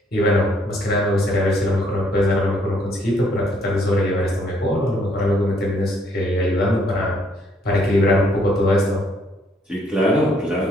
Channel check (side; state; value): both; normal; correlation 0.67